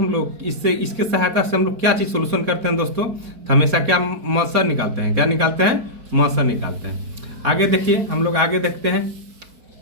लोग इससे इसके सहायता से हम लोग क्या चीज सोल्यूशन करते हैं दोस्तों, तो हमेशा क्या मौसा निकालते हैं, क्या निकालते हैं, मौसा निकालते हैं। आगे देखिए, हम लोग आगे देखते हैं।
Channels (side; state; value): left; late; 4.6 ms